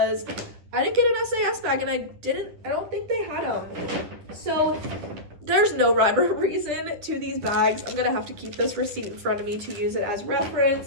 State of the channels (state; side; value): late; left; 10 ms